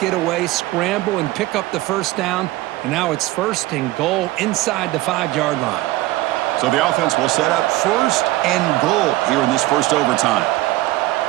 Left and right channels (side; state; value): left; quieter; 18.0 dB